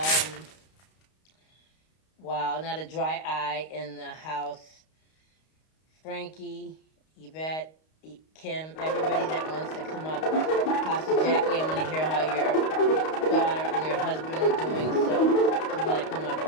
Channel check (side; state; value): right; late; 32 ms